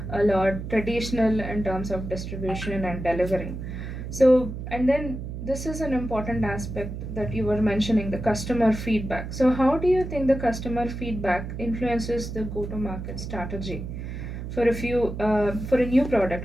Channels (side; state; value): right; noise; hum, 7 dB below the sound